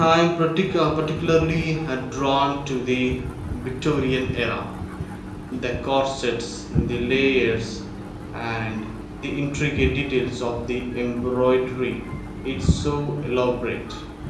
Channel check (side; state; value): both; identical; correlation 1.00